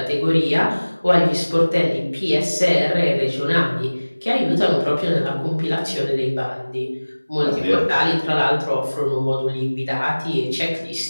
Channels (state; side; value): inverted; both; correlation -1.00